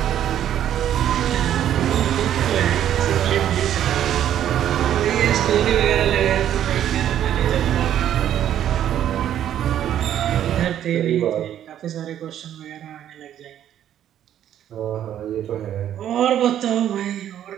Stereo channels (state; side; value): quieter; left; 10.8 dB